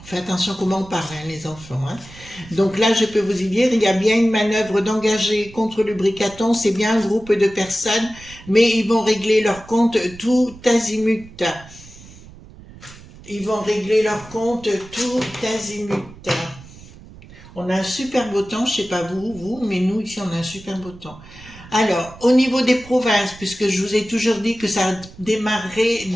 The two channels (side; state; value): right; noise; rumble, 20 dB below the sound